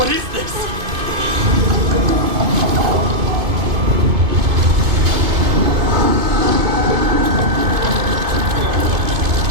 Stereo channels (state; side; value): late; left; 2.5 ms